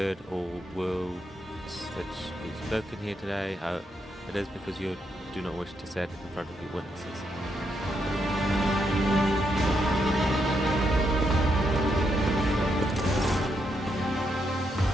all words that we've spoken here today. It is because you do not wish to say it in front of your witnesses.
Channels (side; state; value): both; normal; correlation 0.79